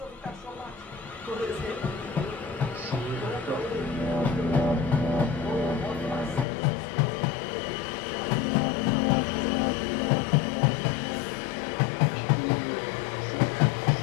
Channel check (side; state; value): right; drops out; at 6.5 s